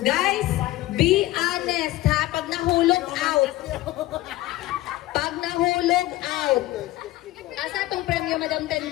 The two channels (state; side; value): quieter; right; 16.9 dB